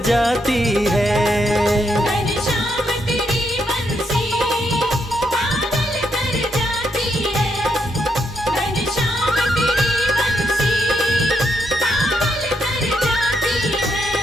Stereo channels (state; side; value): normal; both; correlation 0.79